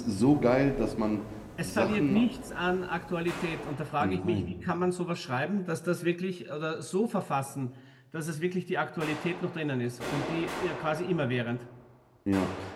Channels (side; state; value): both; identical; correlation 1.00